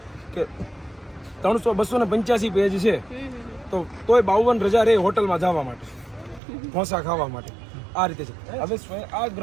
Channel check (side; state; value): left; drops out; at 6.4 s